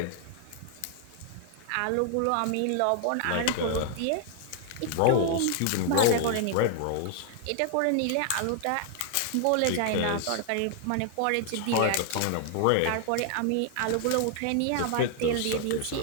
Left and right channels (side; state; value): both; different; correlation 0.00